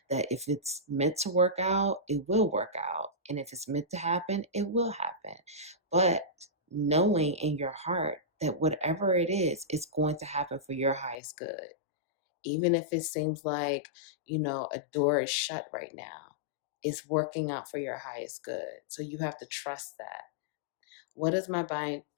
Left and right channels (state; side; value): drops out; right; at 11.2 s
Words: that if it's meant to work out, it will work out. And if it's meant to happen, it will happen. But knowing in your heart that whatever it is, it's going to happen for your highest good. Even if it seems like, a door is shut right now, it's working out for your highest good. So you have to trust that. What is my